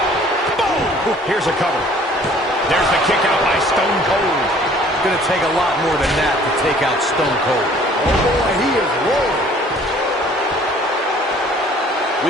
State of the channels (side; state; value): both; normal; correlation 0.54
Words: Boom! Here's a cover. There's the kick out by Stone Cold. It's going to take a lot more than that to take out Stone Cold. Oh boy, he is rolling.